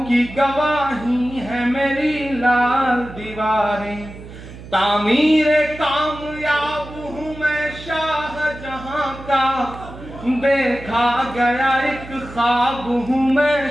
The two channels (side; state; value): right; noise; hum, 15 dB below the sound